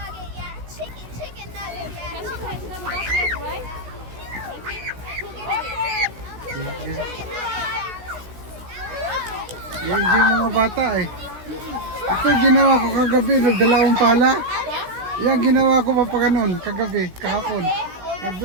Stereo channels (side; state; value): left; late; 16 ms